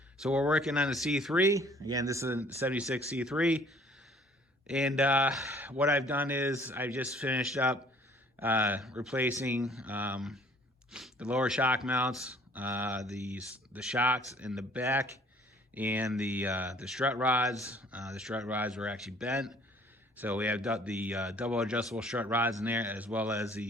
So we're working on the C3. Again, this is a 76 C3. And what I've done is I just finished up replacing the lower shock mounts, the shocks in the back, and the strut rods. The strut rods were actually bent, so we have the double adjustable strut rods in there, as well as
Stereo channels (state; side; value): normal; both; correlation 0.56